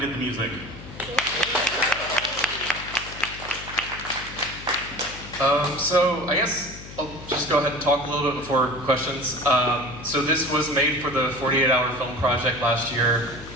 the music. So I guess I'll just go ahead and talk a little bit before questions. So this was made for the 48-hour film project last year.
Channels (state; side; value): noise; left; hum, 15 dB below the sound